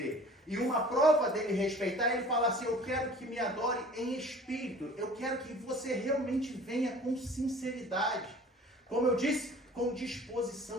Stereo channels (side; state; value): both; normal; correlation 0.46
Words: E uma prova dele respeitar, ele fala assim, eu quero que me adore em espírito. Eu quero que você realmente venha com sinceridade. Como eu disse, com